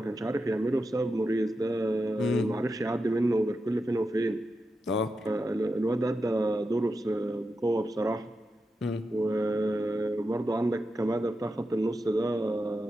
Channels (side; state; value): both; normal; correlation 0.89